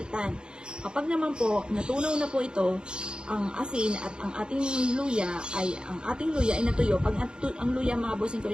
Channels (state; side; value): late; left; 0.050 ms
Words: Kapag naman po, natunaw na po ito, ang asin at ang ating luya ay natuyo. Pag ang luya mga bossing ko